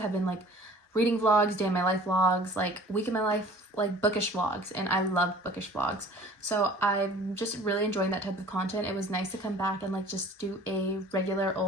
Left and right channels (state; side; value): normal; both; correlation 0.48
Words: have been like reading vlogs, day in my life vlogs, like week in my life, like bookish vlogs, and I love bookish vlogs. So I'm just really enjoying that type of content. It was nice to come back and like just do a regular